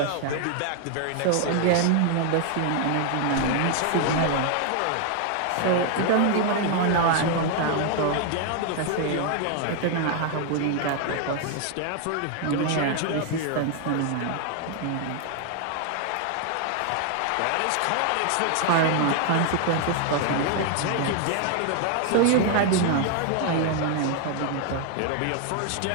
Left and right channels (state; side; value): different; both; correlation 0.00